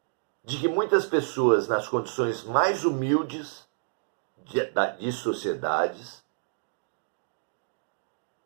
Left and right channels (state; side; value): silent; left; digital silence